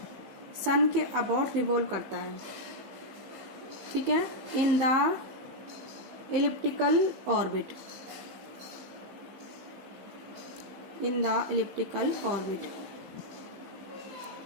सन के अबाउट रिवॉल्व करता है। ठीक है, in the elliptical orbit, in the elliptical orbit।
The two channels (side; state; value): left; late; 15 ms